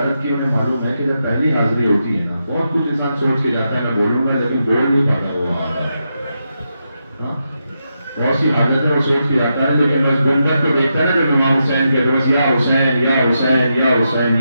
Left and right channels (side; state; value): both; inverted; correlation -0.85